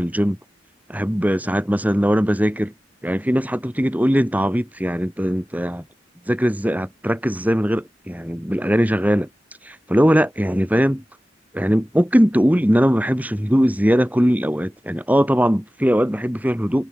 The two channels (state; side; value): normal; both; correlation 0.96